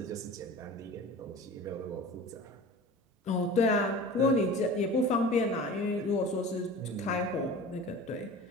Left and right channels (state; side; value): normal; both; correlation 0.38